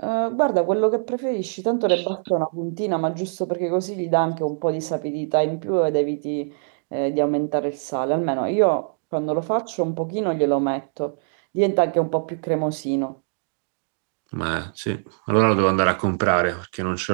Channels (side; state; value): left; silent; digital silence